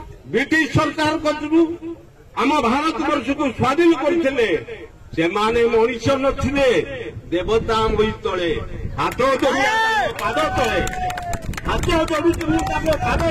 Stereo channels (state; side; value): identical; both; correlation 1.00